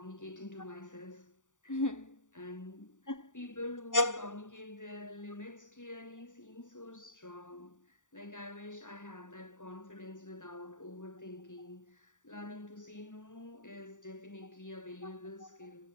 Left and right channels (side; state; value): right; late; 0.86 ms